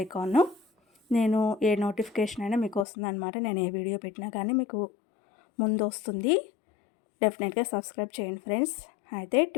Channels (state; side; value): drops out; right; at 2.9 s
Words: ఐకాన్, నేను ఏ నోటిఫికేషన్ అయినా మీకు వస్తుంది అనమాట. నేను ఏ వీడియో పెట్టినా కానీ మీకు ముందు వస్తుంది. డెఫినెట్గా సబ్స్క్రైబ్ చేయండి ఫ్రెండ్స్. అయితే